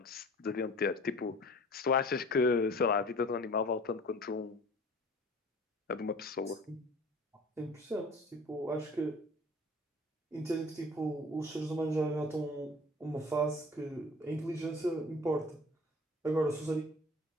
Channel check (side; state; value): both; normal; correlation 0.45